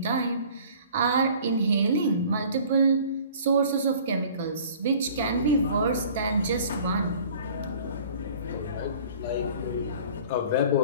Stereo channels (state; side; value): inverted; both; correlation -0.49